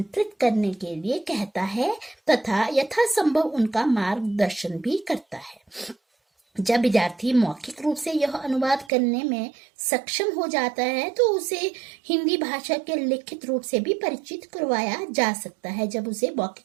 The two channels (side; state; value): left; drops out; at 8.9 s